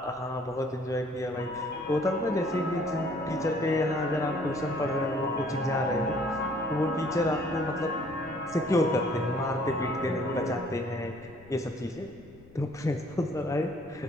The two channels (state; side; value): noise; left; rumble, 24 dB below the sound